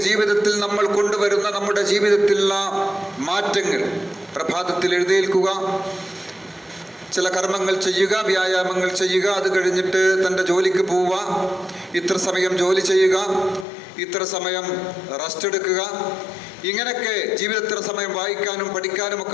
ജീവിതത്തിൽ നമ്മൾ കൊണ്ടുവരുന്ന നമ്മുടെ ജീവിതത്തിലുള്ള മാറ്റങ്ങൾ. പ്രഭാതത്തിൽ എഴുന്നേൽക്കുക, ചില കർമ്മങ്ങൾ ചെയ്യുക, വ്യായാമങ്ങൾ ചെയ്യുക, അത് കഴിഞ്ഞിട്ട് തൻ്റെ ജോലിക്ക് പോവുക, ഇത്ര സമയം ജോലി ചെയ്യുക, ഇത്ര സമയം റെസ്റ്റ് എടുക്കുക, ഇങ്ങനെയൊക്കെ ജീവിതത്തിൽ സമയം വായിക്കാനും പഠിക്കാനും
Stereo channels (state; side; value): drops out; right; at 13.7 s